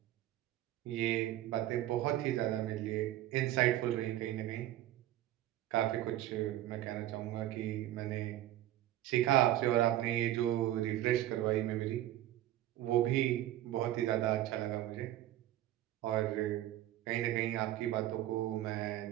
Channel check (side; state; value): left; quieter; 13.8 dB